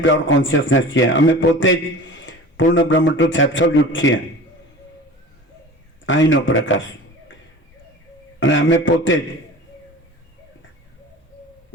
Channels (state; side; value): normal; both; correlation 0.38